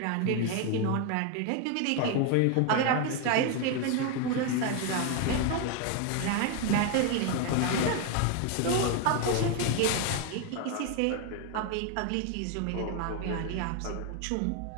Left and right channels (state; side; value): different; both; correlation 0.01